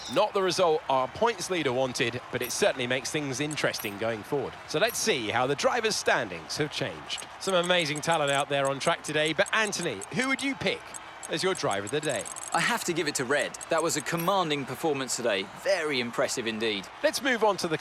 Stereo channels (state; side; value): identical; both; correlation 1.00